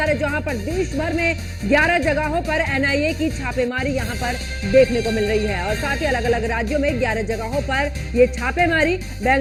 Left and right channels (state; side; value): identical; both; correlation 1.00